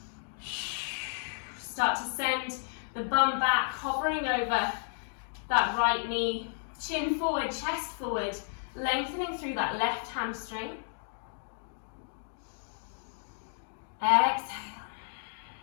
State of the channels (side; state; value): right; silent; digital silence